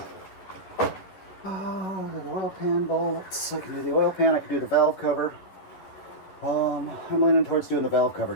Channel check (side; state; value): right; late; 11 ms